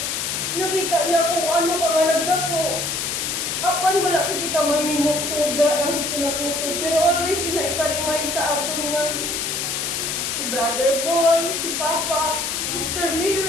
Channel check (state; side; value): noise; left; hiss, 1 dB below the sound